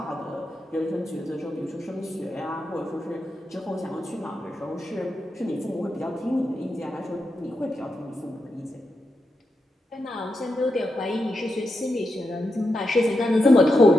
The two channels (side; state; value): both; normal; correlation 0.86